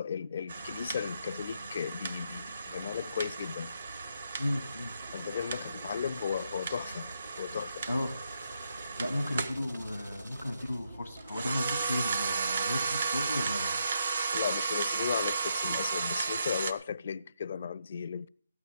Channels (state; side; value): inverted; both; correlation -0.78